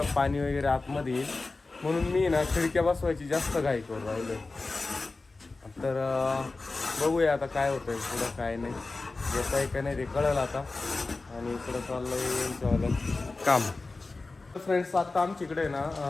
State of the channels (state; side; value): quieter; right; 3.5 dB